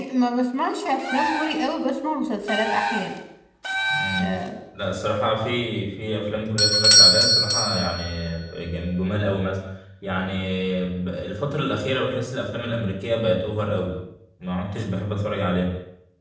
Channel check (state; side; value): identical; both; correlation 1.00